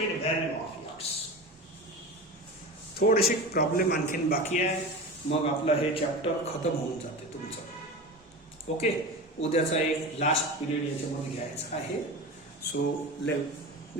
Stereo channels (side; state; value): both; normal; correlation 0.29